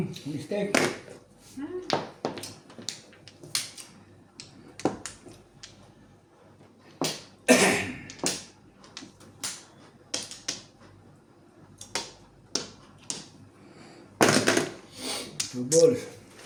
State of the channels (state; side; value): identical; both; correlation 1.00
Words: Mistake. Two balls.